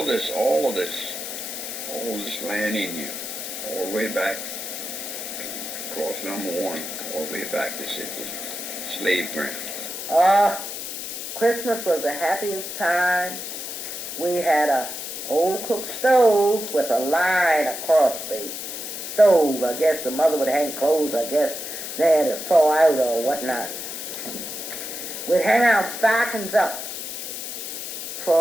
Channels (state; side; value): noise; left; hiss, 7 dB below the sound